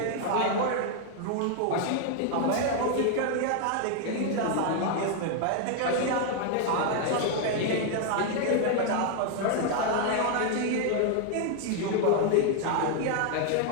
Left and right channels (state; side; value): different; both; correlation 0.00